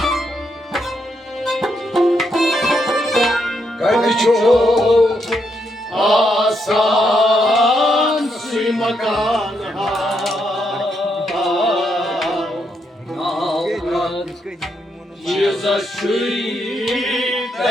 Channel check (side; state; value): both; normal; correlation 0.79